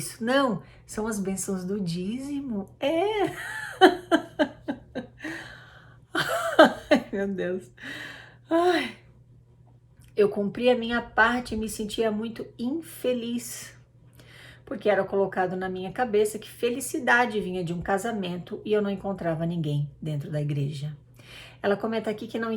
Não, são as bênçãos do dízimo. Ai, meu Deus. Ai. Eu cumpri a minha parte e me sentia muito infeliz, porque era colocado na minha cabeça que felicidade vinha de um casamento e eu não encontrava ninguém dentro da igreja. Ela comenta aqui que não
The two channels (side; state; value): both; identical; correlation 1.00